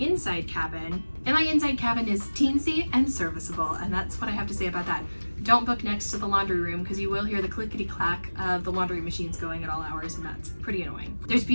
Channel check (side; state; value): both; inverted; correlation -1.00